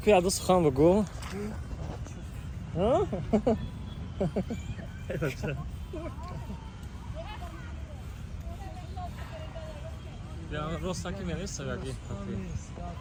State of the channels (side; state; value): both; identical; correlation 1.00